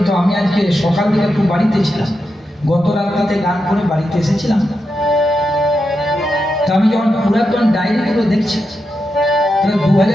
আমি আজকে সকাল থেকে একটু বাড়িতে ছিলাম, গত রাত্রিতে গান করে বাড়িতে এসেছিলাম। তা আমি যখন পুরাতন ডায়েরিগুলো দেখছি, তাহলে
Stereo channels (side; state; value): both; normal; correlation 0.87